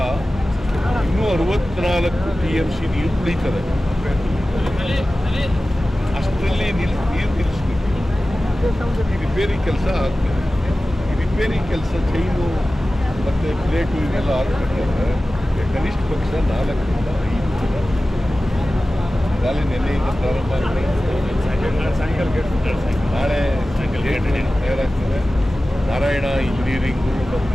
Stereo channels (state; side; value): normal; both; correlation 0.96